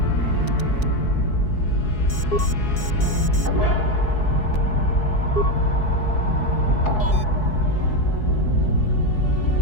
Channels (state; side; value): late; right; 4.7 ms